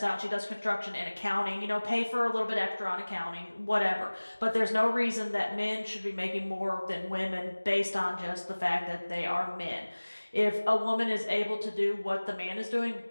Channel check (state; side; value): inverted; both; correlation -1.00